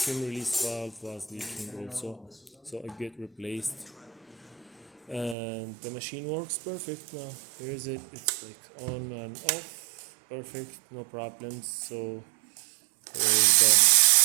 release valve was leaking also, so it get replaced. And the machine works perfect now. Here is it. It's like on and off, perfect, no problems. So here is the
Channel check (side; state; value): left; drops out; at 5.4 s